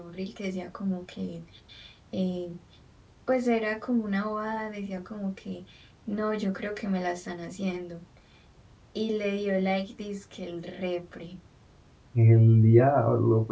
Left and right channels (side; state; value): both; identical; correlation 1.00